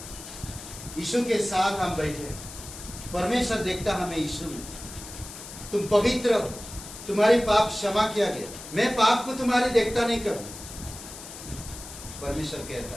यीशु के साथ हम बैठे, परमेश्वर देखता हमें यीशु में। तुम पवित्र हो, तुम्हारी पाप क्षमा किया गया। मैं पाप को तुम्हारे देखता नहीं करूं, परमेश्वर कहता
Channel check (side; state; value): left; noise; hiss, 13 dB below the sound